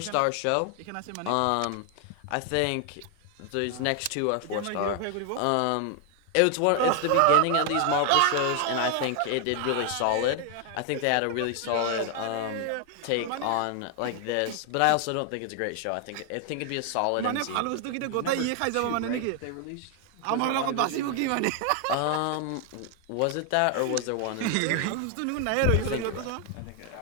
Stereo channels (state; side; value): different; both; correlation 0.00